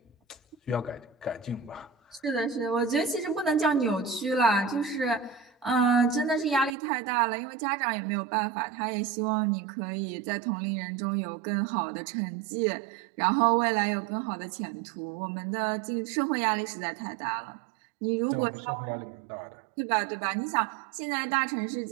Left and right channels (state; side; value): drops out; left; at 6.8 s